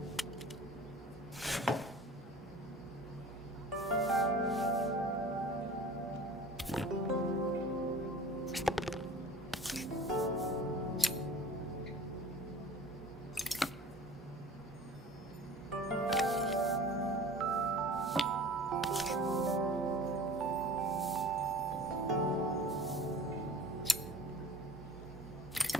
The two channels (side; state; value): both; normal; correlation 0.43